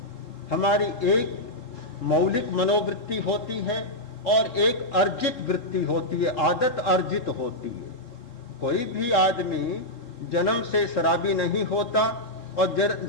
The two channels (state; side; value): late; right; 3.7 ms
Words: हमारी एक मौलिक मनोवृत्ति होती है और एक अर्जित वृत्ति होती है, आदत अर्जित होती है। कोई भी आदमी जन्म से शराबी नहीं होता और